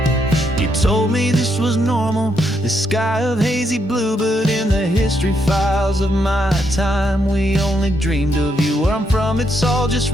Told me this was normal, this sky of hazy blue, but in the history files of my time, we only dreamed of you. Where I'm from, it's all just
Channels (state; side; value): normal; both; correlation 0.77